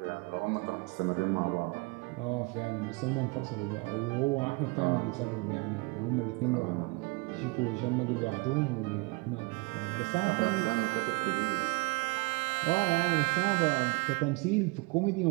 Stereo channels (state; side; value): quieter; left; 27.6 dB